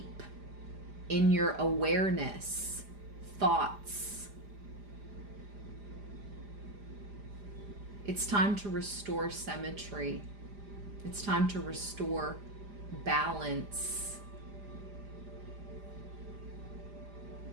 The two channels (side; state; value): left; late; 4.9 ms